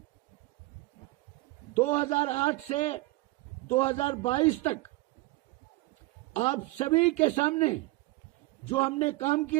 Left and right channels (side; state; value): left; quieter; 21.0 dB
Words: 2008 से 2022 तक आप सभी के सामने जो हमने काम